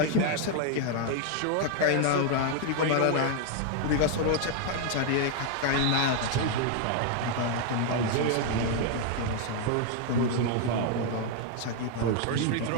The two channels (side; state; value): both; different; correlation 0.00